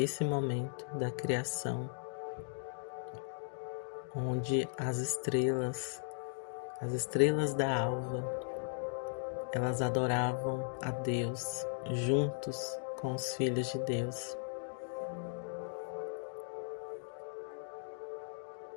momento da criação, onde as estrelas da alva, elas adoravam a Deus juntos com os filhos de Deus.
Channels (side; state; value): right; silent; digital silence